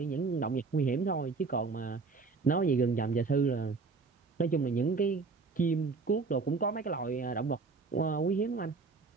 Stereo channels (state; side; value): quieter; left; 4.4 dB